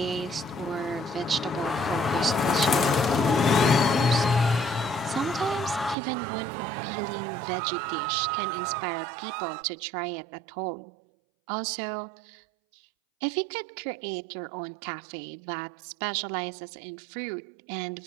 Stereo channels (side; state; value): left; drops out; at 6.0 s